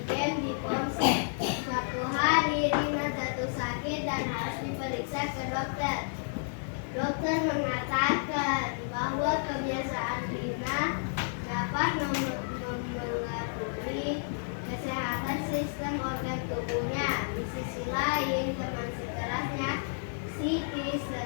game di ponsel. Suatu hari, Rina jatuh sakit dan harus diperiksa ke dokter. Dokter mengatakan bahwa kebiasaan Rina dapat mempengaruhi kesehatan sistem organ tubuhnya. Di sisi lain, teman sekelasnya, Siti,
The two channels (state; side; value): silent; right; digital silence